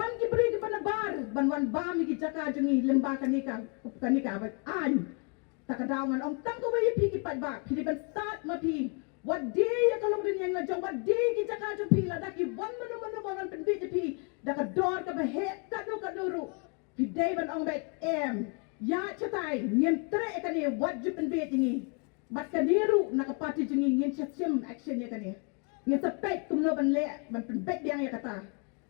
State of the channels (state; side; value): quieter; right; 35.4 dB